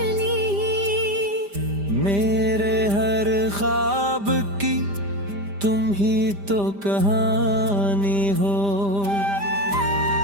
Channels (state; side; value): late; left; 5.0 ms